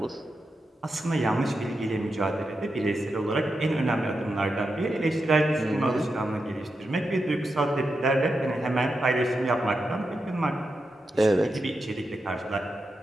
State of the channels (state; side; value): normal; both; correlation 0.87